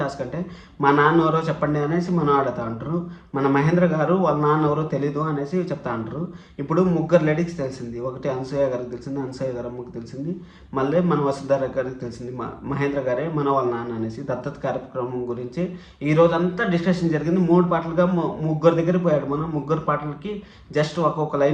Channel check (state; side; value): identical; both; correlation 1.00